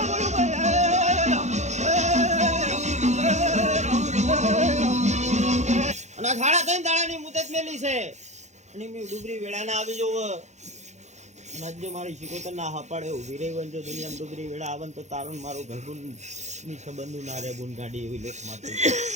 અને આ સાડા 3 દાડાની મુદત મેલી છે અને મેં ડુબરી વેળા ના આવી જવું અને આજે મારી શિકોતર ના હપાડે ઉભી રહી હોય ને જો દુનિયામાં ડુબરી વેળા આવે ને તો તારું ને મારું ઘરગુન ની સંબંધું ના રે બુન ગાડી એવી લેખ મારતી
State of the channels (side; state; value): left; late; 0.33 ms